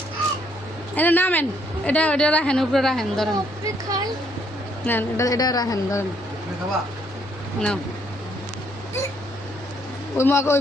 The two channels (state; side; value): normal; both; correlation 0.69